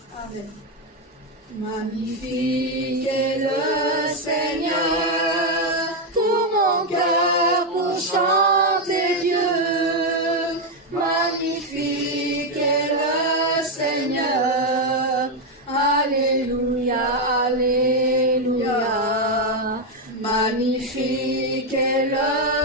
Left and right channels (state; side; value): normal; both; correlation 0.04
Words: Amen. Magnifique est le Seigneur, tout mon cœur pour chanter Dieu. Magnifique est le Seigneur, alléluia, alléluia. Magnifique est